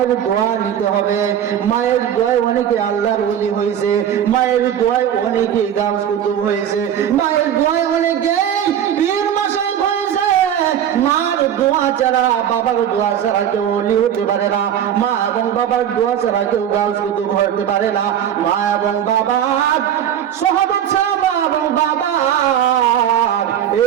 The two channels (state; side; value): quieter; left; 9.8 dB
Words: দোয়া নিতে হবে। মায়ের দোয়ায় অনেকে আল্লাহর ওলি হয়েছে, মায়ের দোয়ায় অনেকে গাউস কুতুব হয়েছে, মায়ের দোয়ায় অনেকে পীর মাশায়েখ হয়েছে। মার দোয়া ছাড়া, বাবার দোয়া ছাড়া কেউ ওলি হতে পারে না, মা এবং বাবার দোয়া ছাড়া কেউ গাউস কুতুব হতে পারে না, মা এবং বাবার সাহাবাত ছাড়া, মা এবং বাবার